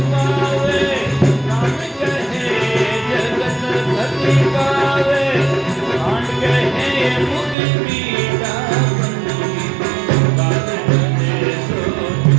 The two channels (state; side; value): drops out; left; at 7.6 s